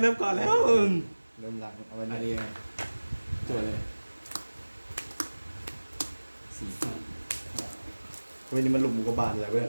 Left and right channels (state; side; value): inverted; both; correlation -1.00